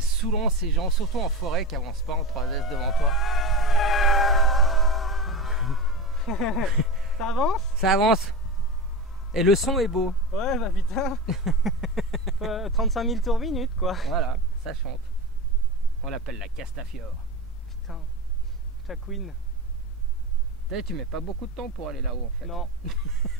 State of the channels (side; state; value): both; normal; correlation 0.26